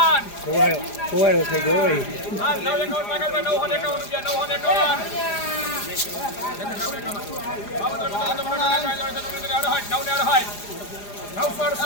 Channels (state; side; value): late; right; 4.9 ms